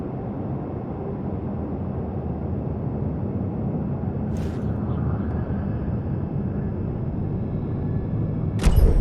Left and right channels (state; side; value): identical; both; correlation 1.00